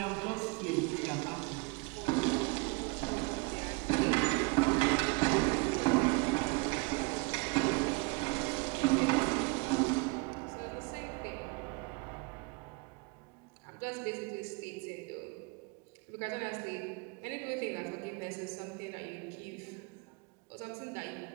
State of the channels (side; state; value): left; quieter; 28.6 dB